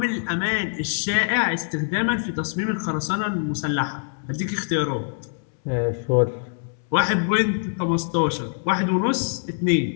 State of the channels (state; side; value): silent; right; 63 dB below the other